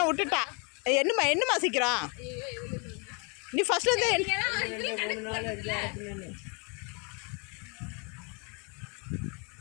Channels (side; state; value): right; quieter; 33.9 dB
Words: விட்டுட்டா. என்னமா சீக்கிரம் நீ ஃபர்ஸ்ட் வந்து